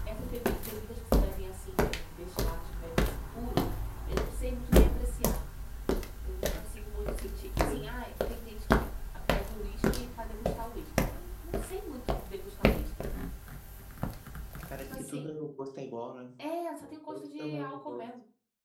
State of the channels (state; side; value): identical; both; correlation 1.00